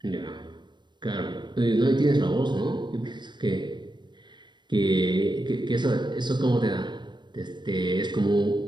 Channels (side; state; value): left; late; 0.22 ms